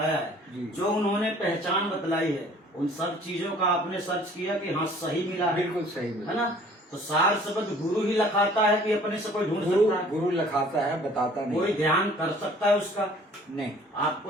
जी। है, जो उन्होंने पहचान बतलाई है, उन सब चीजों का आपने सर्च किया कि हाँ सही मिला है, बिल्कुल सही है ना? तो सार शब्द गुरु ही लखाता है कि अपने से कोई ढूंढ सकता है? गुरु लखाता है, बताता नहीं। कोई ध्यान कर सकता है उसका? नहीं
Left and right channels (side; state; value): both; normal; correlation 0.53